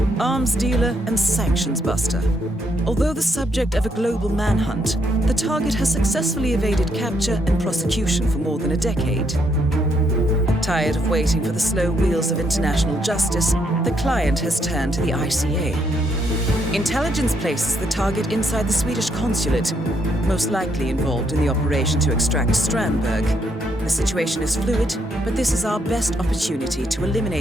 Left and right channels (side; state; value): both; normal; correlation 0.74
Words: arms dealer and sanctions buster. Although the subject of a global manhunt, the target has successfully evaded capture and prosecution for more than a decade. Tired of waiting for the slow wheels of international justice, the client has turned to the ICA. Intelligence places the target inside the Swedish consulate, most likely involved in the operation to extract Strandberg. The situation is fluid, but this is our best opportunity to